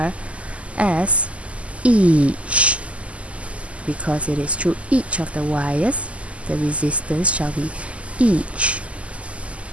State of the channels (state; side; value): late; left; 0.062 ms